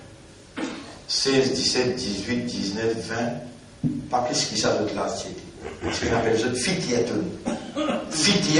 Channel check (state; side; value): identical; both; correlation 1.00